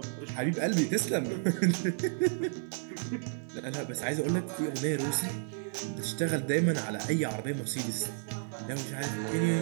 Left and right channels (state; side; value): silent; left; 57 dB below the other